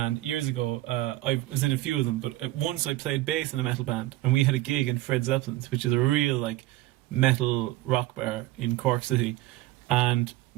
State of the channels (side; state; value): left; quieter; 16.7 dB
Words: years ago I was in a few of them, but once I played bass in a metal band, and we had a gig in Fred Zeppelin's, which is a real like metal rock bar in Cork City, and